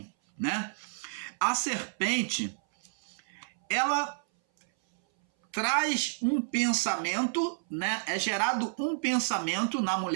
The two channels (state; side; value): silent; left; 58 dB below the other